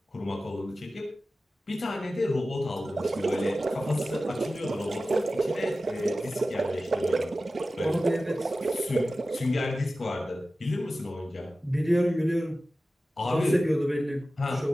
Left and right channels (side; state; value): both; normal; correlation 0.95